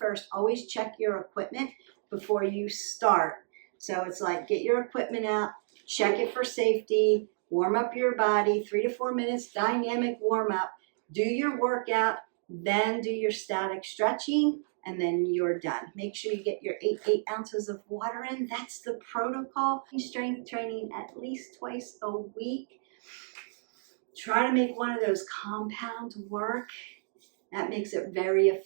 first. Always check your equipment before you start. So it's like, get your equipment out, check it for safety, warm up your body, 3 to 4 minutes, dynamic warm up, do your workout, then do your static stretching, and then you're done. Make sure you get your 8 ounces of water in. That's the protocol. Strength training at least twice a week. Try to make one of those compounds work. That makes it very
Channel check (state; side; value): silent; left; digital silence